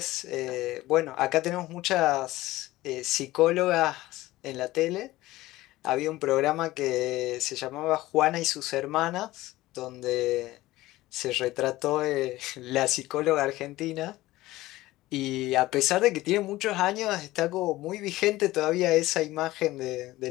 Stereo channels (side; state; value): right; quieter; 17.5 dB